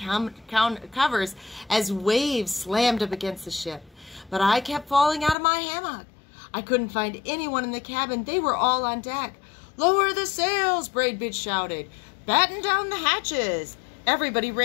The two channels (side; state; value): right; drops out; at 5.4 s